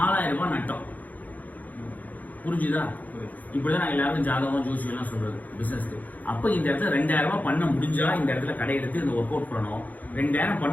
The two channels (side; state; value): right; late; 0.081 ms